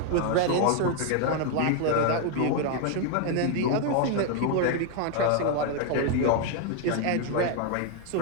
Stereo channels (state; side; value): different; both; correlation 0.00